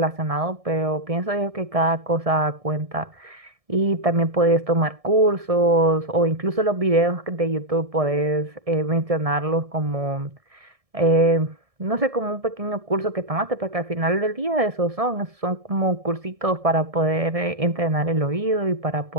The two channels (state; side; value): late; left; 1.7 ms